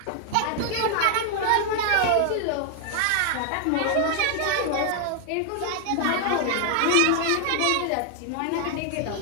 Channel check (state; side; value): different; both; correlation 0.00